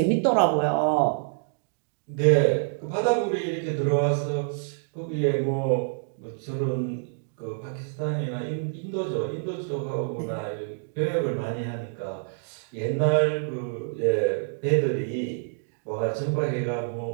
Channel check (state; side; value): silent; left; digital silence